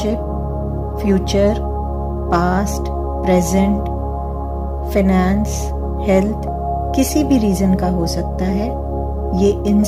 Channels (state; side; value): identical; both; correlation 1.00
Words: future, past, present, finance, health किसी भी रीजन का हो सकता है। ये